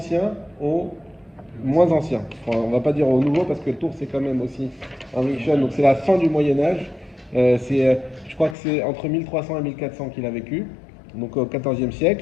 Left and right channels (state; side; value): drops out; right; at 8.6 s